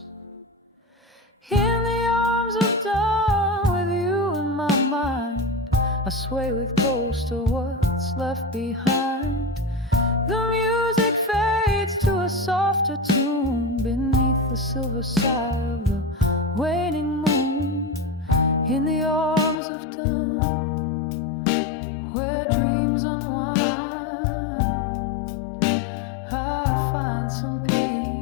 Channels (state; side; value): drops out; right; at 19.6 s